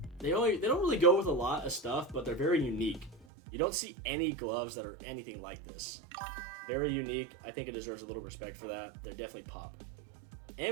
They don't really go with a lot of stuff, but they're very unique. You don't see any gloves that are anything like this. Very unique. I think it deserves a little respect for that. They're definitely pop.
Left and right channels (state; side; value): drops out; left; at 3.2 s